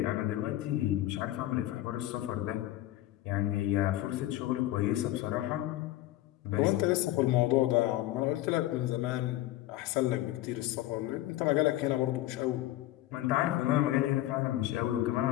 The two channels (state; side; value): quieter; right; 15.1 dB